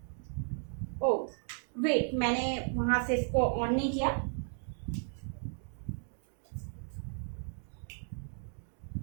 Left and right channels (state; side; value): silent; left; 55 dB below the other